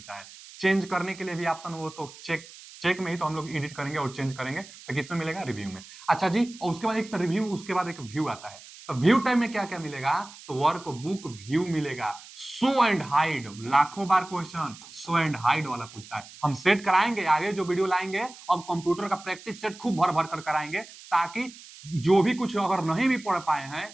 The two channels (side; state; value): right; noise; hiss, 18 dB below the sound